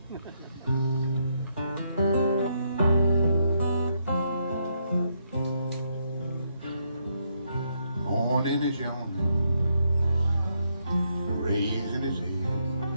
Morning is yawning, raising his head,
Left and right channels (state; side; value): inverted; both; correlation -0.77